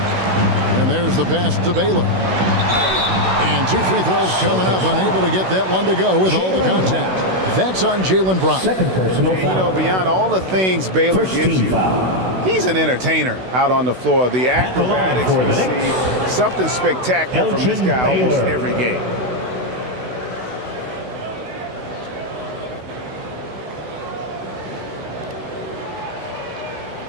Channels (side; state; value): left; late; 16 ms